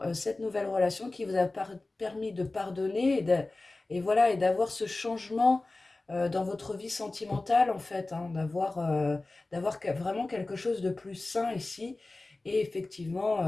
cette nouvelle relation qui vous a permis de pardonner et voilà, et d'avoir ce changement dans votre vie sentimentale en fait, hein, d'avoir vraiment quelque chose de plus sain ici et effectivement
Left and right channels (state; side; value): quieter; right; 3.1 dB